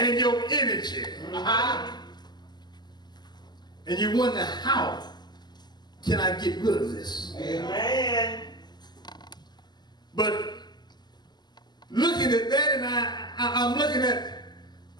your energy. And you wonder, how can I get rid of this? Amen. But looking at that, and I'm looking at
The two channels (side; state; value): right; late; 0.21 ms